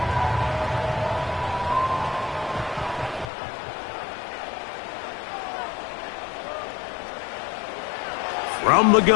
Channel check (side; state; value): right; drops out; at 3.3 s